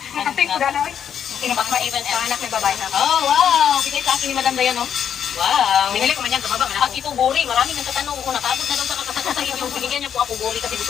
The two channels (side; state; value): right; quieter; 8.6 dB